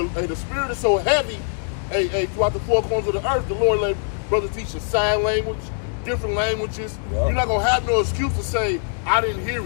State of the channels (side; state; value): right; silent; digital silence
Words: the spirit is so heavy, hey, throughout the four corners of the earth, the Lord let brothers teach you sign language, different languages. Yeah. You're not going to have no excuse to say, I didn't